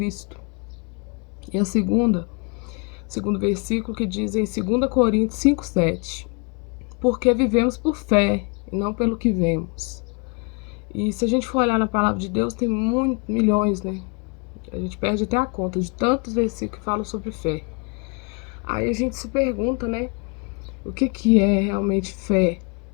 E a segundo versículo que diz em 2 Coríntios 5:7: porque vivemos por fé e não pelo que vemos. E se a gente for olhar na palavra de Deus, tem milhões, né? A gente perde até a conta de tantos versículos que falam sobre fé. Aí a gente se pergunta, né? O que é realmente fé,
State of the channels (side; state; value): right; quieter; 33.4 dB